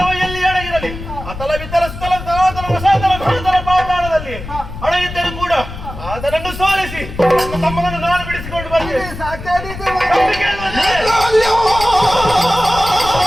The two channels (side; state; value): left; noise; rumble, 10 dB below the sound